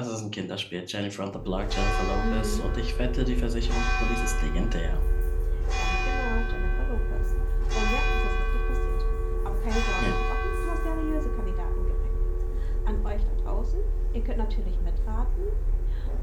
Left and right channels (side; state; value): both; identical; correlation 1.00